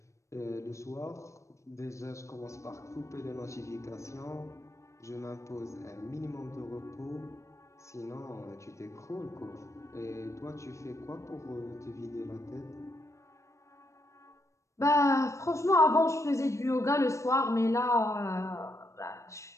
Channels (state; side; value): late; right; 0.15 ms